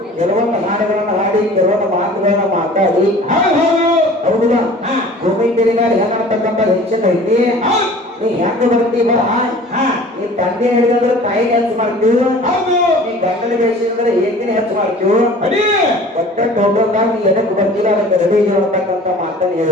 ಕೆಲವೊಂದು ಹಾಡುಗಳನ್ನ ಹಾಡಿ ಕೆಲವೊಂದು ಮಾತುಗಳನ್ನ ಮಾತಾಡಿ ಹೌದಲ್ಲ ಭೂಮಿ ತೆರಿಗಾಡಿ ಹೆಂಗಾಡ್ತಕ್ಕಂಥ ಹೆಚ್ಚಿನ ಐತಿ ನೀ ಹೆಂಗ ಬರ್ತೀವ ನೀ ತಂದೆ ಹಿಡಿದ್ರೆ ತಾಯಿ ಹೆಚ್ಚು ಮಾಡ್ತೀವಿ ನೀ ಗಂಡನ ಬೇಸಿದ್ರೆ ಏಕಿನ ಹೆಚ್ಚು ಮಾಡ್ತೀವಿ ಒಟ್ಟ ಟೋಟಲ್ದಾಗ ನೀ ಎದಕ್ಕೆ ಬರ್ತಿಲ್ಲ ಅದಕ್ಕೆ ರೆಡಿ ಅಂತಕ್ಕಂಥ ಮಾತನ್ನು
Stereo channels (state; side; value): normal; both; correlation 0.45